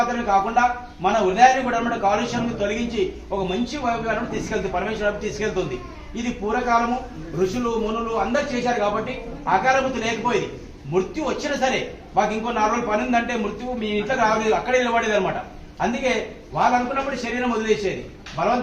కాకుండా మన హృదయాన్ని కూడా అనమాట కాలుష్యాన్ని తొలగించి ఒక మంచి వైపు తీసుకెళ్తుంది, పరమేశ్వరం తీసుకెళ్తుంది. ఇది పూర్వకాలము ఋషులు మునులు అందరు చేశారు కాబట్టి ఆకారబుద్ధి లేకపోయేది. మృత్యు వచ్చినా సరే మాకు ఇంకో 4 రోజులు పని ఉందంటే మృత్యువు మీ ఇంట్లో రాలేదు, అక్కడే నిలబడేది అనమాట. అందుకే వాళ్ళు అనుకున్నప్పుడు శరీరం వదిలేసేది,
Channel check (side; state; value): both; identical; correlation 1.00